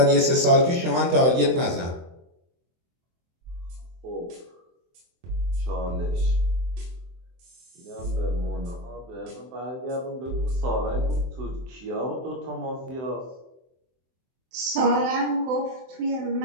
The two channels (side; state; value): left; late; 23 ms